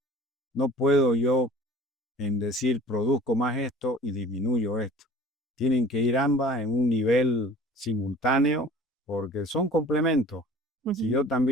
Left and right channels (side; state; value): both; normal; correlation 0.46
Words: No puedo yo en decir produzco más esto y disminuyo esto. Tienen que ir ambas en un nivel simultáneo porque son complementos. Si Ujú. yo